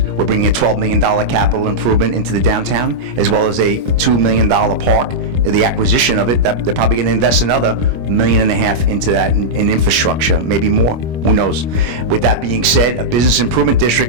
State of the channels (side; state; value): left; late; 25 ms